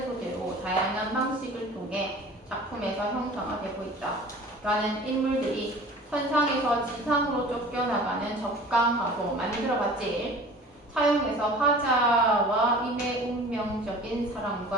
소재로 다양한 방식을 통해 작품에서 형성하되고 있다. 라는 인물들이 선상에서 지상으로 쫓겨나가는 적강하고 만들어봤지. 사용해서 화자와 임의 운명적인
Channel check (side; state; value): both; normal; correlation 0.43